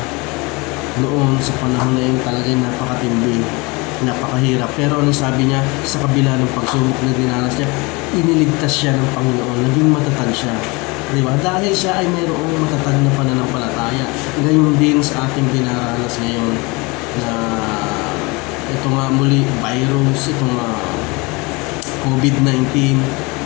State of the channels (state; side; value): quieter; right; 26.4 dB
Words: noon sa panahon na yun talagang napakatindi, napakahirap. Pero ano sabi niya, sa kabila ng pagsubok na dinanas niya, iniligtas siya ng Panginoon, naging matatag siya. Di ba? Dahil siya ay mayroong matatag na pananampalataya. Gayon din sa ating dinaranas ngayon na ito nga muli, virus, itong COVID-19